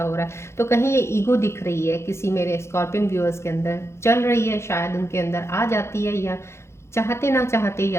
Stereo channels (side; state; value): right; late; 0.13 ms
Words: हो रहा है। तो कहीं ये ईगो दिख रही है किसी मेरे स्कॉर्पियन व्यूअर्स के अंदर चल रही है, शायद उनके अंदर आ जाती है या चाहते ना चाहते ही